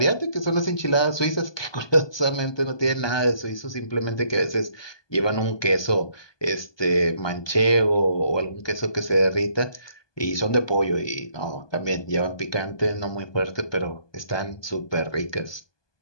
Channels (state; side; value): late; right; 1.2 ms